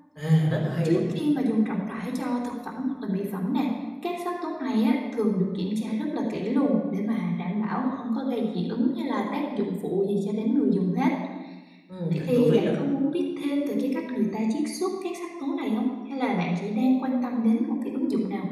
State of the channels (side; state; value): both; identical; correlation 1.00